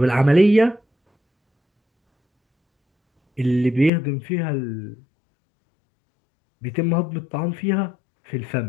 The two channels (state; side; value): drops out; right; at 3.9 s